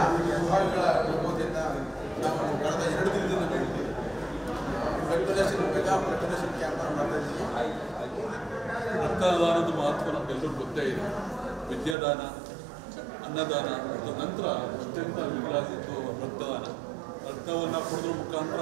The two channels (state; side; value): drops out; left; at 12.0 s